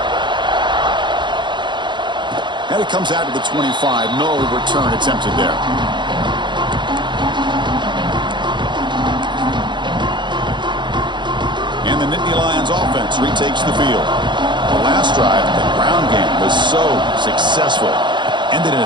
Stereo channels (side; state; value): left; late; 0.22 ms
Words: And it comes out to the 25. No return attempted there. And the Nittany Lions offense retakes the field. The last drive, the ground game was so successful. Ended in